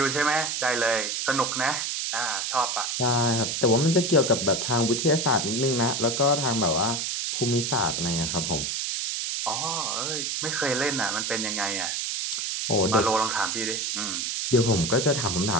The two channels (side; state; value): right; noise; hiss, 1 dB below the sound